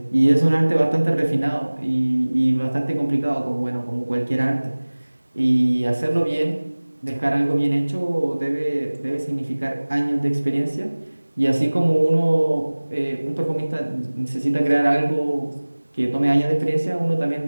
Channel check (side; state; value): both; inverted; correlation -1.00